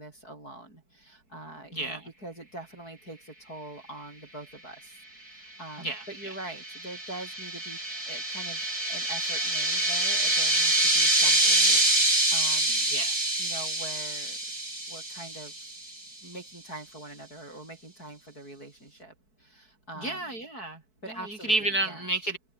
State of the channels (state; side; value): late; right; 4.6 ms